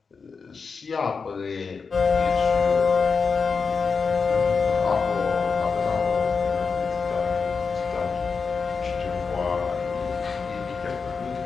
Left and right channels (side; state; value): right; quieter; 5.2 dB